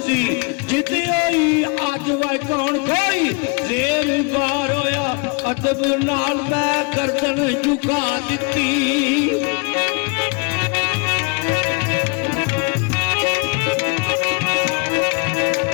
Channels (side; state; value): right; quieter; 33.8 dB